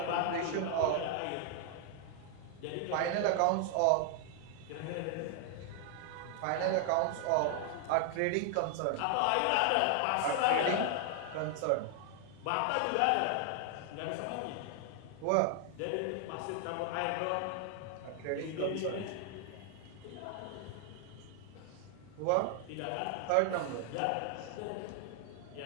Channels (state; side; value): different; both; correlation 0.00